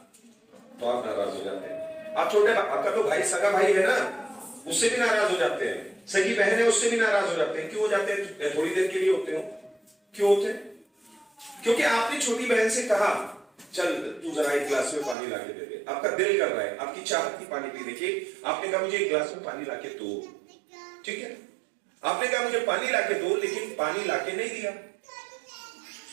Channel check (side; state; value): left; drops out; at 15.2 s